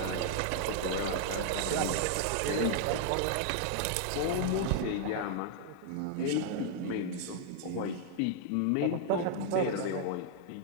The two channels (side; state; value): both; different; correlation -0.01